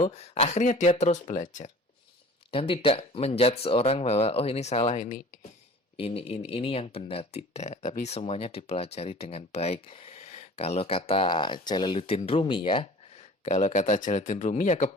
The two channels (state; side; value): normal; both; correlation 0.45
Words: akhirnya dia terus belajar. Dan tidak menjudge seorang bahwa oh ini salah, ini yang benar, tidak. Tapi semuanya dipelajari dengan baik. Kalau kata Jalaluddin Rumi ya, kalau kata Jalaluddin Rumi ya